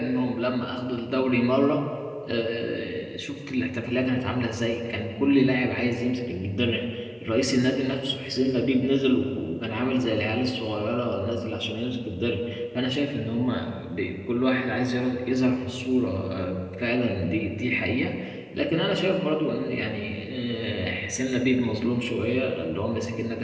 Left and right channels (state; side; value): identical; both; correlation 1.00